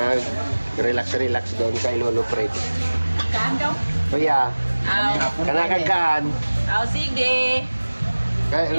doon kay Lolo Fred. Kaan daw? Kuya, kanakagaan. Sige. Kaya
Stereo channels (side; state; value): both; inverted; correlation -1.00